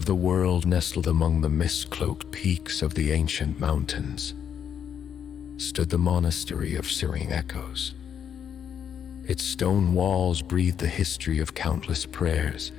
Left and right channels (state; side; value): quieter; right; 8.4 dB